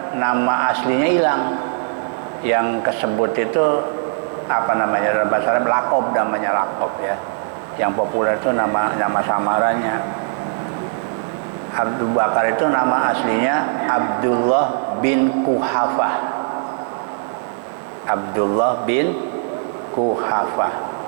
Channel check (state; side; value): silent; left; digital silence